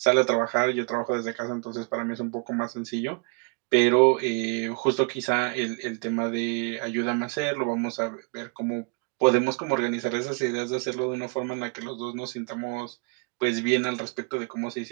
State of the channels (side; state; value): left; quieter; 32.4 dB